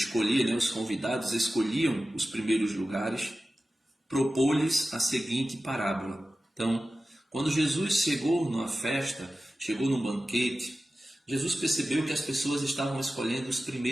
os convidados escolhiam os primeiros lugares, propôs-lhes a seguinte parábola. Então, quando Jesus chegou numa festa, chegou num banquete, Jesus percebeu que as pessoas estavam escolhendo os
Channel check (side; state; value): both; normal; correlation 0.94